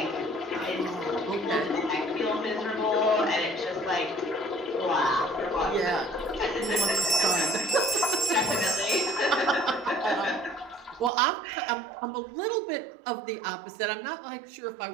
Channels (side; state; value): left; drops out; at 11.1 s